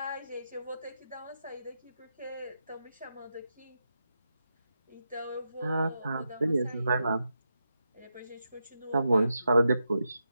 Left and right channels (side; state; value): both; inverted; correlation -0.86